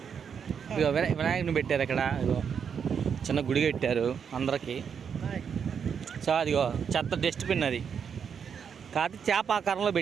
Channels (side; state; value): left; quieter; 7.1 dB